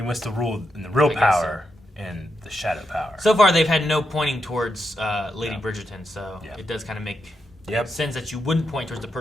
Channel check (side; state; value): both; normal; correlation 0.84